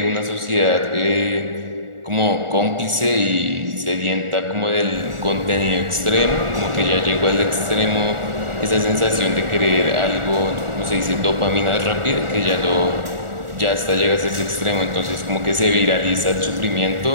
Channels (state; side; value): late; left; 1.4 ms